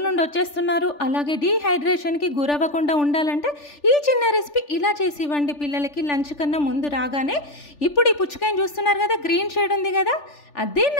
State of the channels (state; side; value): late; right; 3.4 ms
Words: నుండి వచ్చేస్తున్నారు. అలాగే డీహైడ్రేషన్కి గురవ్వకుండా ఉండాలంటే ఈ చిన్న రెసిపీ ఇలా చేసి ఇవ్వండి పిల్లలకి లంచ్ కన్నా ముందు రాగానే. ఇప్పుడు ఈ పుచ్చకాయని చూస్తున్నారు కదా, గ్రీన్ షేడ్ ఉంది కదా,